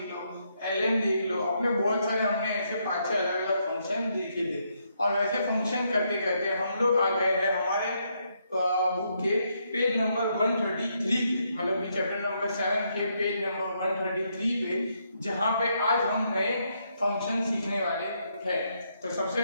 लो, ln देख लो, अपने बहुत सारे हमने ऐसे 5-6 अलग-अलग फंक्शन देखे थे। और वैसे फंक्शन करते करते हम लोग आ गए हैं हमारे बुक के पेज नंबर 133 पे, मतलब कि चैप्टर नंबर 7 के पेज नंबर 133 पे, जहां पे आज हम नए फंक्शन सीखने वाले हैं। तो सबसे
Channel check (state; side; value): inverted; both; correlation -0.77